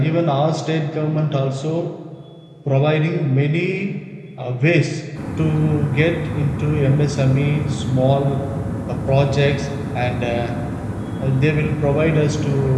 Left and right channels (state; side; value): identical; both; correlation 1.00